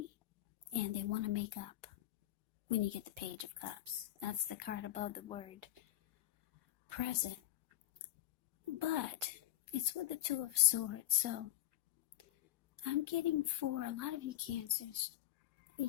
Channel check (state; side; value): quieter; right; 14.9 dB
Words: and they want to make up when you get the Page of Cups. That's the card above the word present. But it's with the Two of Swords, so I'm getting for a lot of you Cancers,